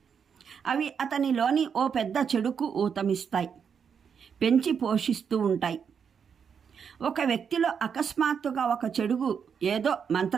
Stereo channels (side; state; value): left; quieter; 6.9 dB